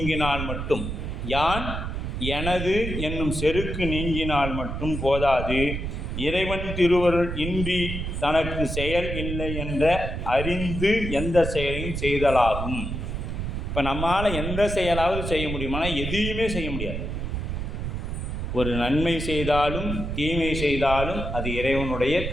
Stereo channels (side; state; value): right; noise; rumble, 4 dB below the sound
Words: மட்டும், யான் எனது என்னும் செருக்கு நீங்கினால் மட்டும் போதாது, இறைவன் திருவருள் இன்றி தனக்கு செயல் இல்லை என்ற அறிந்து எந்த செயலையும் செய்தலாகும். இப்போ நம்மால் எந்த செயலாவது செய்ய முடியுமானா எதையுமே செய்ய முடியாது. ஒரு நன்மை செய்தாலும் தீமை செய்தாலும் அது இறைவனுடைய